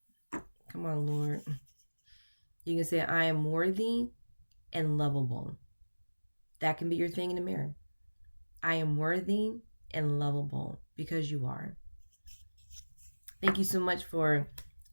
come on, Lord. You can say, I am worthy and lovable. That can be your thing in the mirror. I am worthy and lovable because you are. Thank you so much for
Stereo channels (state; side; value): inverted; both; correlation -1.00